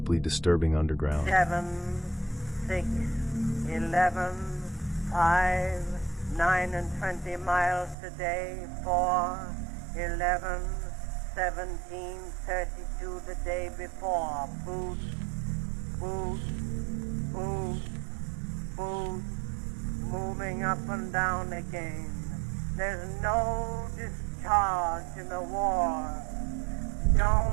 disturbing underground. 7, 6, 11, 5, 9 and 20 miles today, 4, 11, 17, 32 the day before. Boot, boot, boot, boot, moving up and down again. There's no discharge in the war.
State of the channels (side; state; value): left; drops out; at 8.0 s